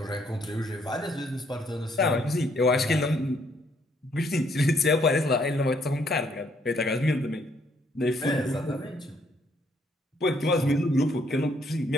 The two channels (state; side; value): normal; both; correlation 0.69